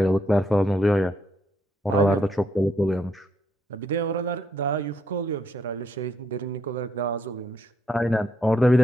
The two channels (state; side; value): normal; both; correlation 0.75